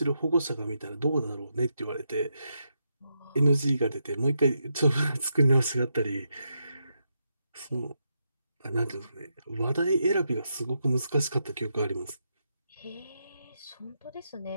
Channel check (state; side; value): inverted; both; correlation -0.83